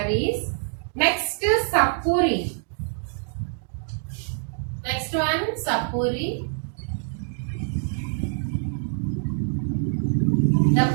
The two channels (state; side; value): silent; left; digital silence